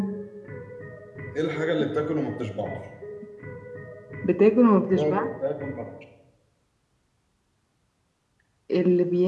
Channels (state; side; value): identical; both; correlation 1.00